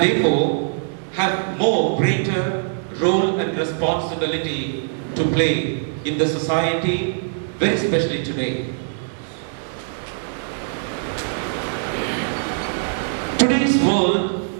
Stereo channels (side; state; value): left; silent; digital silence